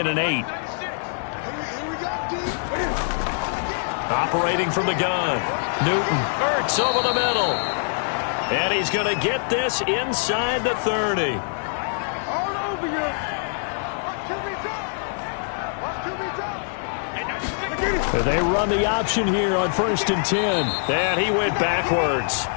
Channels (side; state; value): right; silent; 63 dB below the other